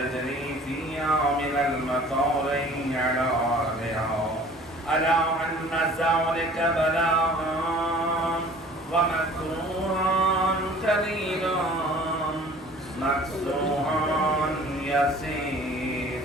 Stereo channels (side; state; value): both; normal; correlation 0.49